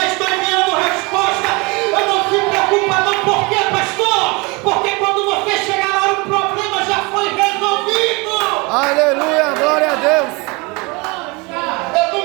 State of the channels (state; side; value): quieter; left; 27.2 dB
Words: estou enviando resposta. Eu não se preocupa não, por quê, pastor? Porque quando você chegar lá, o problema já foi resolvido. Aleluia, glória a Deus. Eu